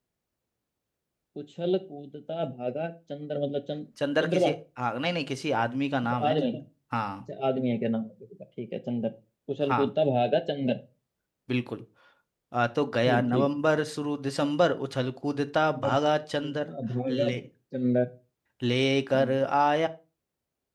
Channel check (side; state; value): both; identical; correlation 1.00